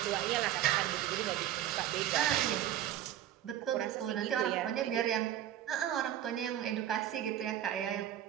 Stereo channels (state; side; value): quieter; left; 11.6 dB